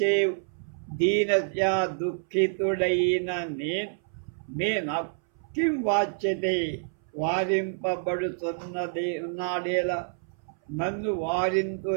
దీనస్య దుఃఖితుడైన నేను కిం వాచ్యతే వారింపబడుతున్నది ఉన్నాడేలా నన్ను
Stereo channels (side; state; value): left; silent; 60 dB below the other